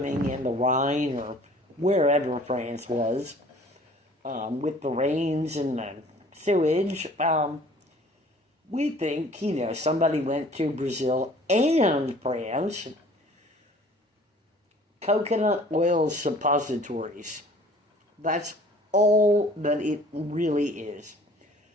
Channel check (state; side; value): normal; both; correlation 0.51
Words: in the Rhine or wherever France was, with the rains and the sewage, we think, somebody went to Brazil and France. Coconut oil suppositories. That's all that it really is.